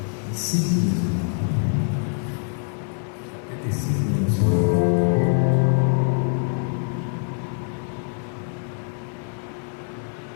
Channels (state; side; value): silent; right; 56 dB below the other